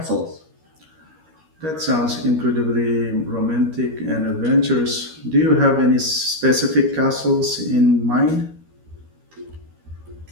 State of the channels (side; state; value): left; late; 13 ms